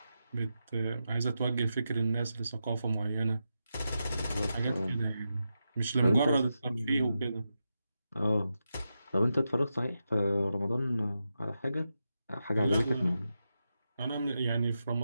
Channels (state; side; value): inverted; both; correlation -0.88